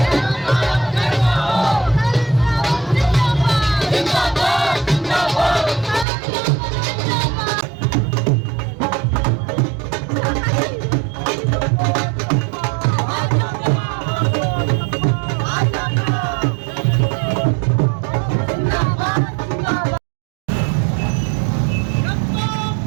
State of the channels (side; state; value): left; drops out; at 6.1 s